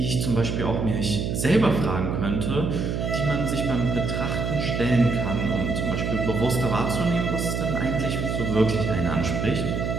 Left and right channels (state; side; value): noise; right; hum, 1 dB below the sound